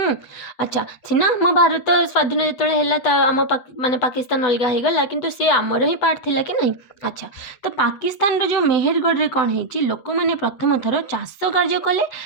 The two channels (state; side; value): late; right; 8.0 ms